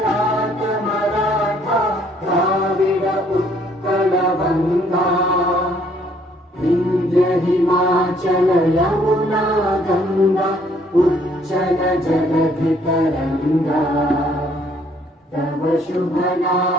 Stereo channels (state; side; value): normal; both; correlation 0.64